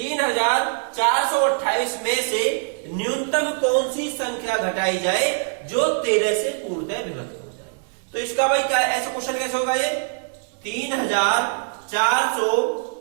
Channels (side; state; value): left; silent; digital silence